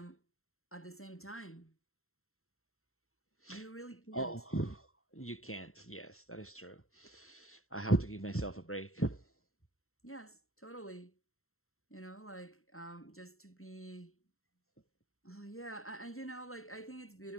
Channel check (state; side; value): late; right; 0.62 ms